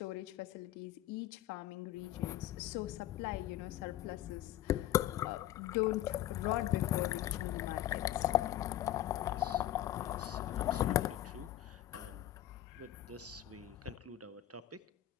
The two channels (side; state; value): right; quieter; 13.1 dB